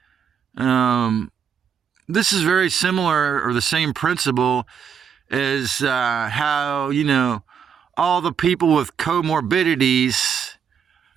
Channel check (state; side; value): quieter; left; 7.4 dB